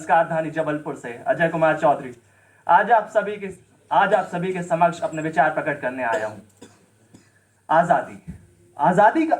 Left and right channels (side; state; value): both; identical; correlation 1.00